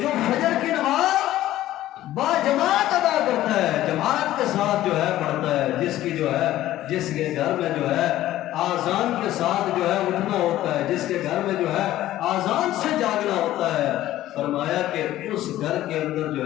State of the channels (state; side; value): quieter; right; 14.3 dB